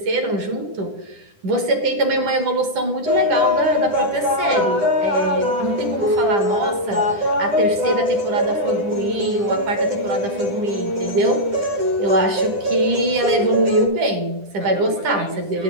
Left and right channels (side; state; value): left; late; 10 ms